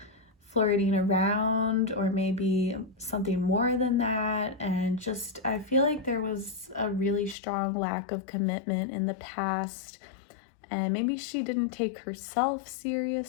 flirting around, or maybe something more than that. And just, I feel like there was a really strong lack of commitment in the past, and maybe she didn't take herself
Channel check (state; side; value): drops out; right; at 7.4 s